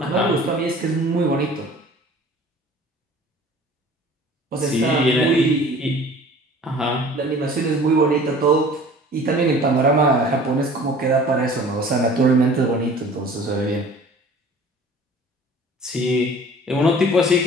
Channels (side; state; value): both; normal; correlation 0.47